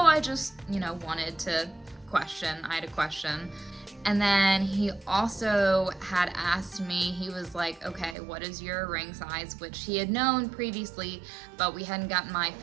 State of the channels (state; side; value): drops out; left; at 8.2 s